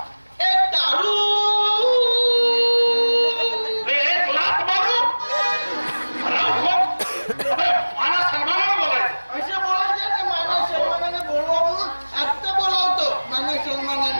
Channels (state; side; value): inverted; both; correlation -1.00